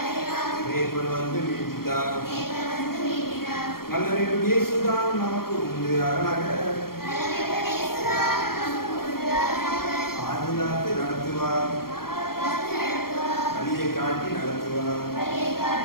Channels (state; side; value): late; right; 0.93 ms